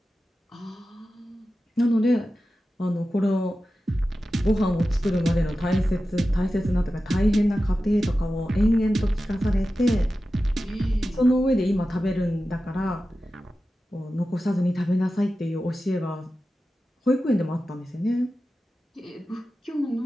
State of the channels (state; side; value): normal; both; correlation 0.93